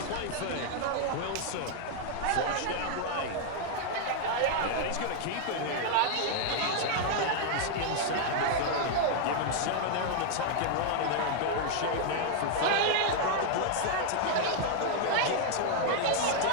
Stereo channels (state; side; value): different; both; correlation 0.00